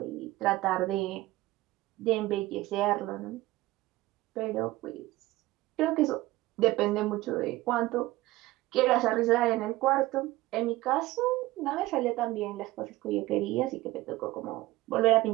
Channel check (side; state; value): left; quieter; 18.3 dB